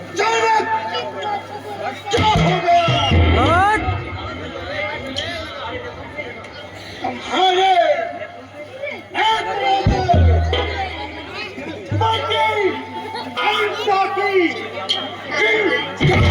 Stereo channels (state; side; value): identical; both; correlation 1.00